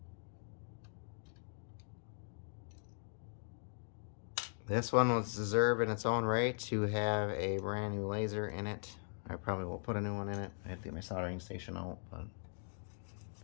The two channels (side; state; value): right; silent; digital silence